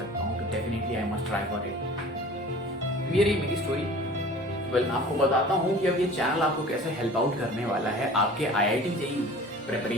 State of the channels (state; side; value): normal; both; correlation 0.43